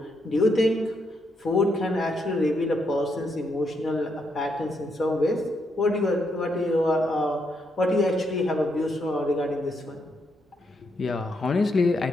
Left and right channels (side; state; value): both; normal; correlation 0.78